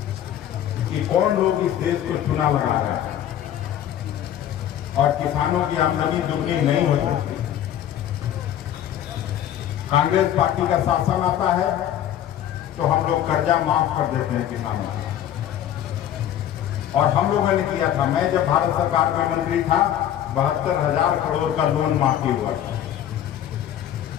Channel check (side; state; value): right; quieter; 11.0 dB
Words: कि कौन लोग इस देश को चुना लगा रहे हैं। और किसानों की आमदनी दुगनी नहीं हो सकती। कांग्रेस पार्टी का शासन आता है तो हम लोग कर्जा माफ कर देते हैं किसानों का। और हम लोगों ने किया था, मैं जब भारत सरकार में मंत्री था 72,000 करोड़ का लोन माफी हुआ था,